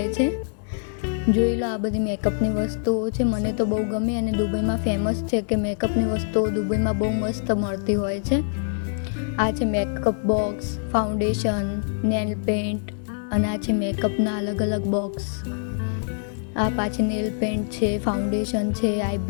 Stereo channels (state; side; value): silent; right; digital silence